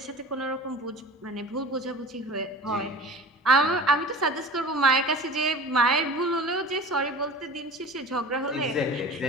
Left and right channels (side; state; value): both; normal; correlation 0.38